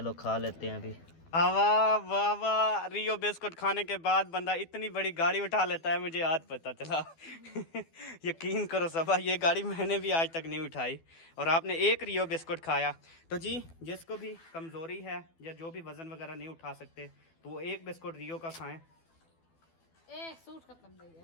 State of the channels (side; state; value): right; late; 12 ms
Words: खा लेते हैं अभी। वाह वाह वाह, रियो बिस्कुट खाने के बाद बंदा इतनी बड़ी गाड़ी उठा लेता है, मुझे आज पता चला। यकीन करो सबा, ये गाड़ी मैंने भी आज तक नहीं उठाई और आपने एक रियो बिस्कुट खाया। तो जी जिसको भी कमज़ोरी है या जो भी वज़न वगैरह नहीं उठा सकते तो वो एक बिस्कुट रियो का खाएं। सूट खत्म हो